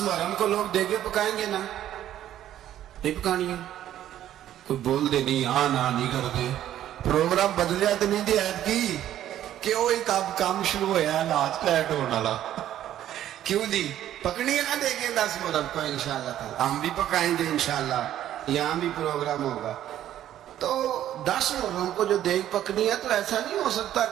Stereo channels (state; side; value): quieter; left; 11.9 dB